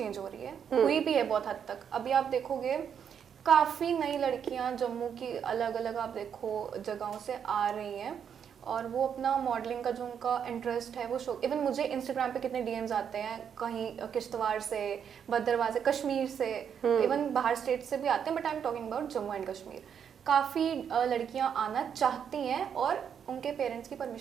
हो रही है, हुई भी है बहुत हद तक। अभी आप देखोगे काफ़ी नई लड़कियां जम्मू की अलग अलग आप देखो जगहों से आ रही हैं, और वो अपना मॉडलिंग का जो उनका इंटरेस्ट है वो शो। इवन मुझे इंस्टाग्राम पे कितने डीएम्स आते हैं, कहीं किश्तवाड़ से, भद्रवाह से, कश्मीर से, इवन बाहर स्टेट से भी आते हैं, but I am talking about Jammu and Kashmir. काफ़ी लड़कियां आना चाहती हैं, और उनके पेरेंट्स की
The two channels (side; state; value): left; quieter; 7.9 dB